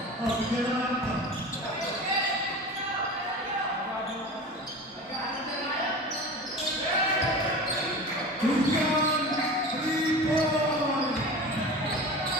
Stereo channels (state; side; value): normal; both; correlation 0.33